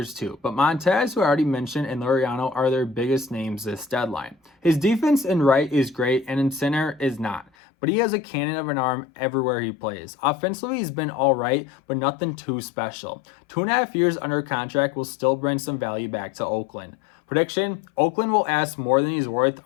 too. But Montas, who I already mentioned, and Laureano are their biggest names this deadline. His defense in right is great and in center is not. But he has a cannon of an arm everywhere he plays. Offensively, he's been alright, but nothing too special. 2.5 years under contract will still bring some value back to Oakland. Prediction, Oakland will ask more than he's worth,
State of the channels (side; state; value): right; drops out; at 7.5 s